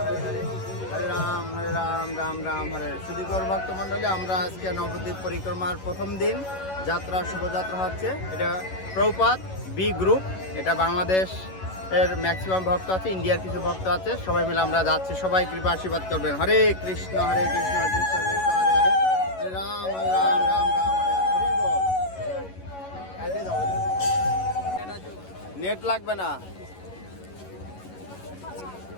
রাম রাম রাম হরে। সুধীকর ভক্তমণ্ডলী, আমরা আজকে নবদ্বীপ পরিক্রমার প্রথম দিন যাত্রা, শুভযাত্রা হচ্ছে। এটা প্রভুপাদ বি গ্রুপ, এটা বাংলাদেশ এর ম্যাক্সিমাম ভক্ত আছে, ইন্ডিয়ার কিছু ভক্ত আছে, সবাই মিলে আমরা যাচ্ছি। সবাই কৃপা আশীর্বাদ করবেন। হরে কৃষ্ণ হরে কৃষ্ণ কৃষ্ণ কৃষ্ণ হরে হরে, হরে রাম রাম রাম হরে বল। নেট লাগবে না।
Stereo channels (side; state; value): right; late; 11 ms